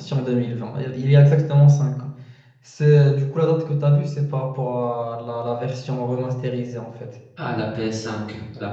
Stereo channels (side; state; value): both; identical; correlation 1.00